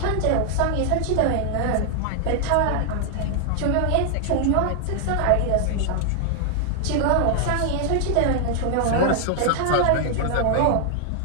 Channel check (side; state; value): both; different; correlation 0.00